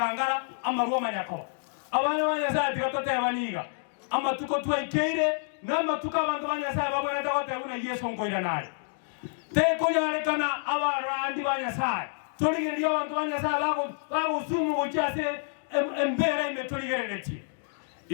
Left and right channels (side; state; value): right; silent; digital silence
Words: amaruwa manyako abana banyasa tikatote baniga amatuko twaikeire namatuka abantu banyasa babona takote una Yesu ngoira nali te kunyarekana abarandi banyasa toligeri abantu banyasa bago sumu gochase embera imetoligereti